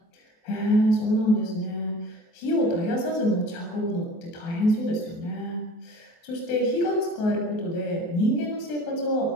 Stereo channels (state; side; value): late; right; 24 ms